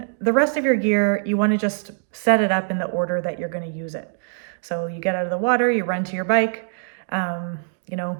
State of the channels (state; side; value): silent; left; digital silence